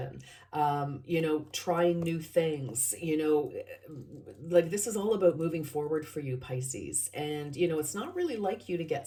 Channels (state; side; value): identical; both; correlation 1.00